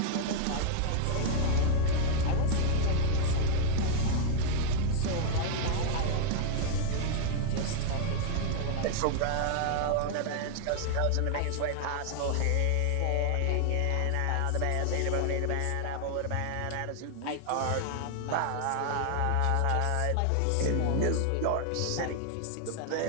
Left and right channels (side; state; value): both; different; correlation -0.01